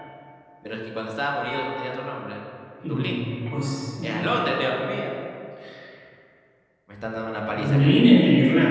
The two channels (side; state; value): both; identical; correlation 1.00